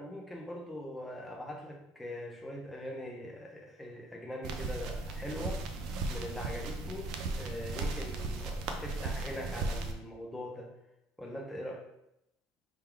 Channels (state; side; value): normal; both; correlation 0.63